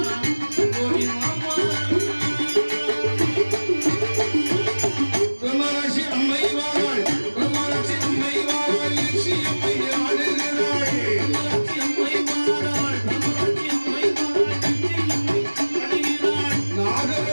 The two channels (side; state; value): both; inverted; correlation -1.00